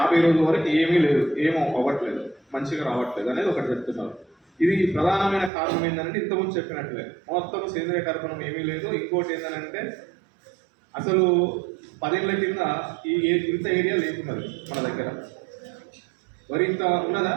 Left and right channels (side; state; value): left; drops out; at 5.5 s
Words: రోజుల వరకు ఏమీ లేదు, ఏమో అవ్వట్లేదు, మంచిగా రావట్లేదు అనేది ఒకటి చెప్తున్నారు. ఇది ప్రధానమైన కారణం ఏంటంటే ఇంతకుముందు చెప్పినట్లే మొత్తం సేంద్రియ కర్బనం ఏమీ లేదు. ఇంకోటి ఏంటంటే అసలు 10 ఏళ్ల కింద ఇంత ఏరియా లేకున్నది మన దగ్గర. మరి ఇంత ఉన్నదా?